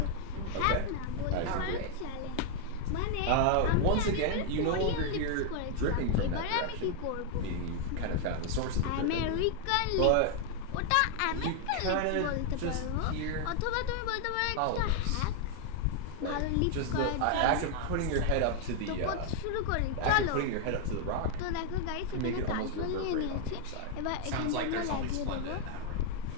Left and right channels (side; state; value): both; different; correlation 0.00